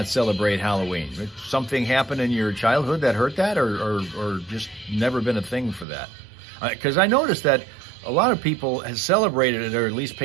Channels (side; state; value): left; drops out; at 5.9 s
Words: celebrate Halloween. Did something happen in your childhood that hurt that or just never been a thing for that? Because I noticed that a lot of people have celebrated it or at least